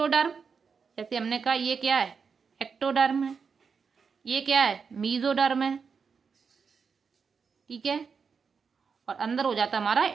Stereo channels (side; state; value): left; quieter; 5.8 dB